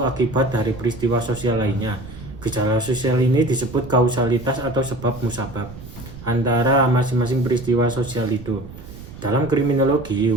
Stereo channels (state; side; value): noise; right; rumble, 14 dB below the sound